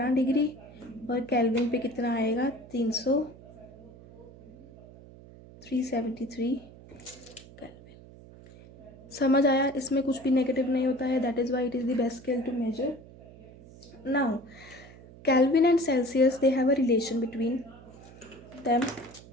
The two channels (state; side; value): noise; right; hum, 20 dB below the sound